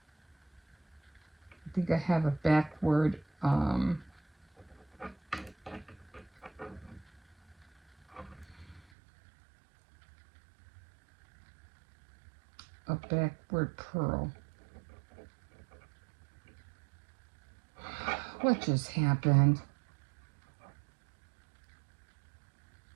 think I have a backward pearl. What just happened?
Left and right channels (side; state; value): left; drops out; at 8.8 s